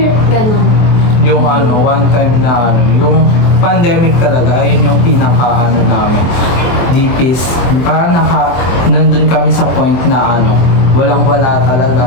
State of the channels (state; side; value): late; right; 24 ms